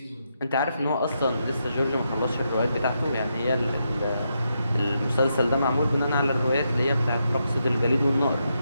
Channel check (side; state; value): both; inverted; correlation -0.82